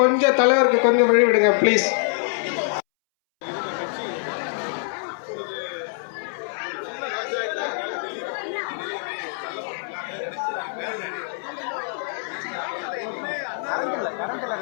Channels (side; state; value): right; silent; 62 dB below the other